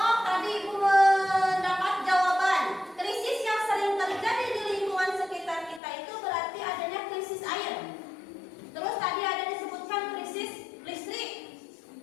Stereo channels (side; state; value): right; drops out; at 5.8 s